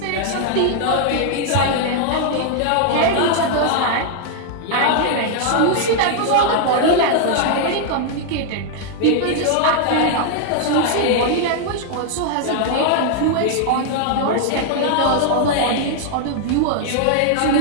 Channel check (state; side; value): different; both; correlation 0.00